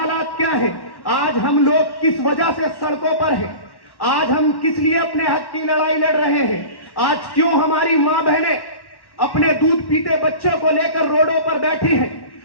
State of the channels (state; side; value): late; right; 1.1 ms